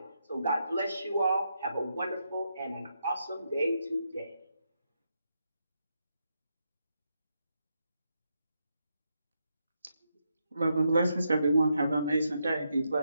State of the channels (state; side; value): inverted; both; correlation -0.82